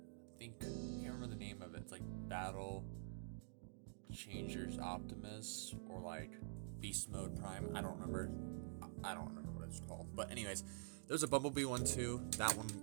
can't remember the name of it. It's like Battle Changers Optimus or like Beast Mode Prime. I don't remember what it's called. But anyways, there's a Bumblebee one too. That one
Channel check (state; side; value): silent; left; digital silence